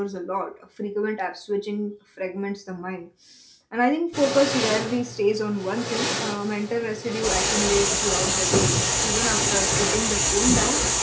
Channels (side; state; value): both; identical; correlation 1.00